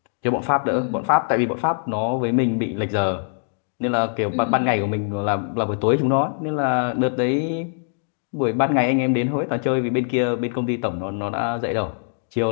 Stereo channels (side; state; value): right; silent; digital silence